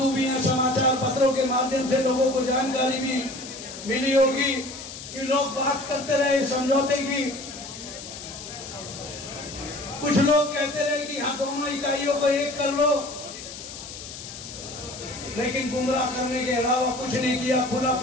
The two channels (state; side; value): noise; left; hiss, 12 dB below the sound